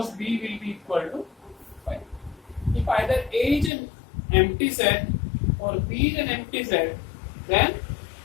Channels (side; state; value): right; drops out; at 3.7 s